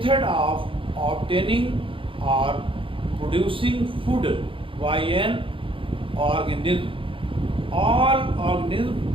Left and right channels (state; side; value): late; left; 0.25 ms